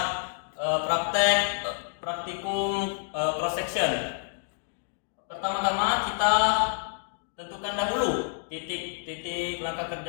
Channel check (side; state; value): right; silent; digital silence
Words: praktikum cross section. Pertama-tama kita tentukan dahulu titik langkah